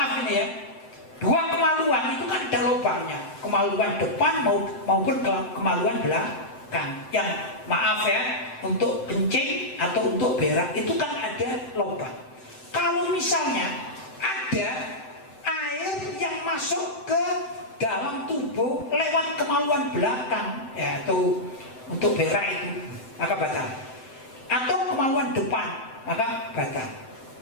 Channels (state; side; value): late; right; 7.8 ms